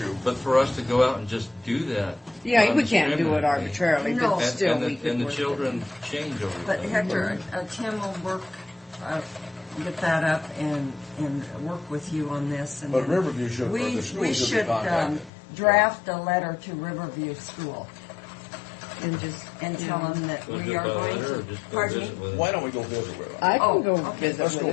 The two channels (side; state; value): right; drops out; at 15.3 s